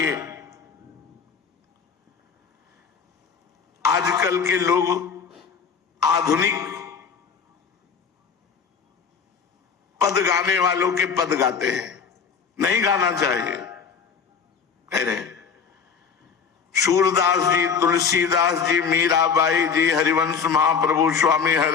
आजकल के लोग आधुनिक पद गाने वालों के पद गाते हैं, नहीं गाना चाहिए। कह रहे सूरदास जी, तुलसीदास जी, मीराबाई जी, हरिवंश महाप्रभु स्वामी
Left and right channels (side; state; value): right; quieter; 6.2 dB